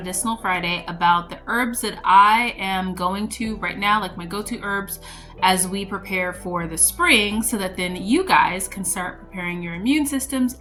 Friday about the herbs that I am going to right now, like my go-to herbs as we prepare for the spring, so that then you guys can start preparing your immune systems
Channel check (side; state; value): both; identical; correlation 1.00